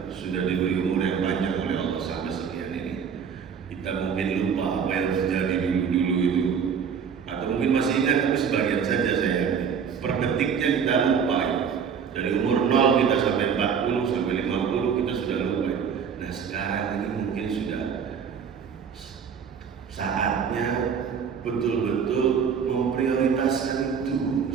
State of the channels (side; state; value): left; quieter; 7.0 dB